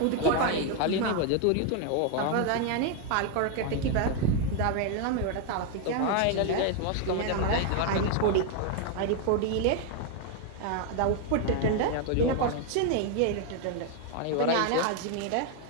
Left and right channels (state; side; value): different; both; correlation 0.01